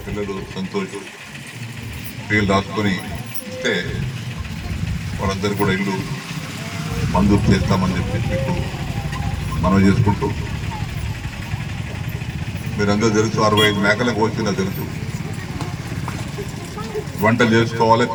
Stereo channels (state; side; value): identical; both; correlation 1.00